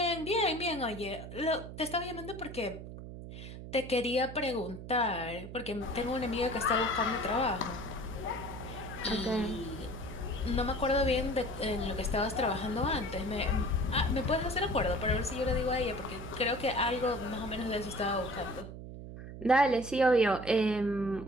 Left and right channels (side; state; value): right; noise; hum, 11 dB below the sound